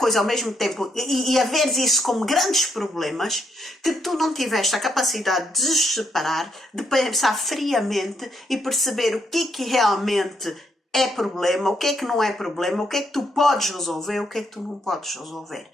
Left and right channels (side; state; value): both; normal; correlation 0.76